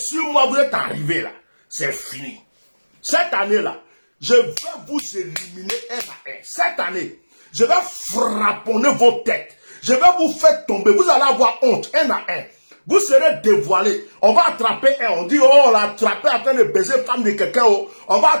moi vous êtes arrivé là, c'est fini. Cette année-là, je vais vous éliminer un à un. Cette année, je vais frapponner vos têtes. Je vais vous faire tomber. Vous allez avoir honte un à un. Vous serez dévoilés. On va attraper un. On dit, oh, on l'a attrapé en train de baiser femme de quelqu'un. Oh. On va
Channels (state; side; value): inverted; both; correlation -1.00